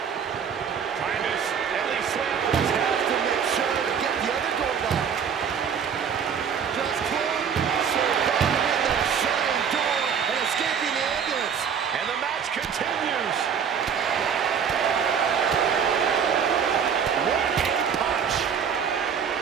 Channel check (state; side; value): quieter; left; 7.2 dB